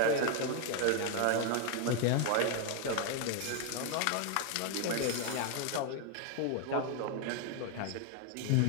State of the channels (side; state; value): both; different; correlation 0.00